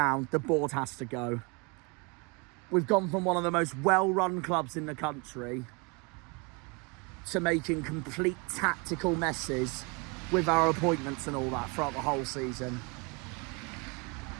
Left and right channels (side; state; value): left; quieter; 30.6 dB